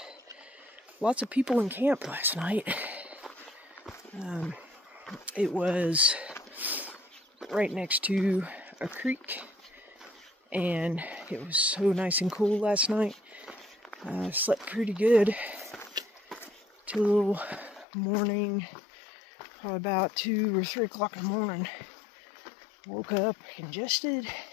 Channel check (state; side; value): drops out; right; at 17.9 s